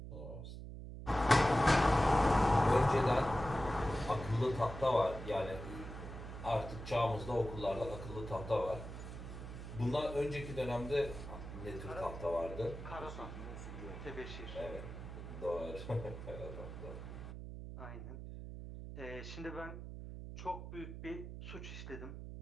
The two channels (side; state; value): right; noise; hum, 9 dB below the sound